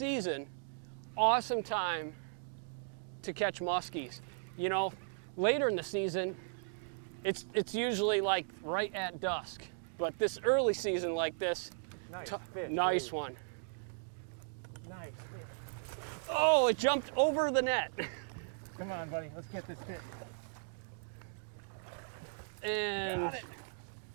awesome time to catch muskies. You know, later in the season, it's usually like right at dusk. But this early season like this, Nice fish. nice Lee. one. Nice fish. Oh, it jumped over the net. Come on, buddy, let's get this fish. And Got it.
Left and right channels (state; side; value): silent; left; digital silence